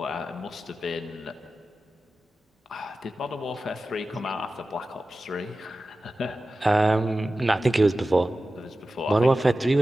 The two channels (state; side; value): normal; both; correlation 0.94